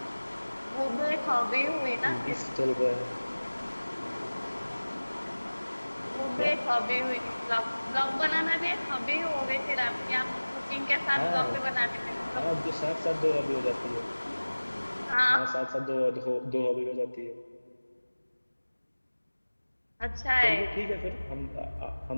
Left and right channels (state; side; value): inverted; both; correlation -1.00